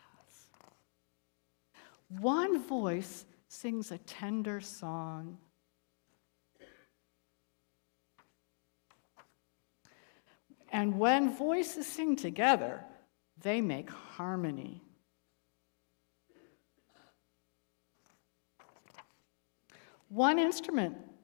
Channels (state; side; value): silent; right; digital silence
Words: One voice sings a tender song. And when voices sing together, they make harmony. One instrument